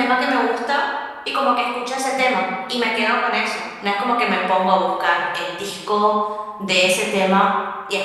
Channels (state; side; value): identical; both; correlation 1.00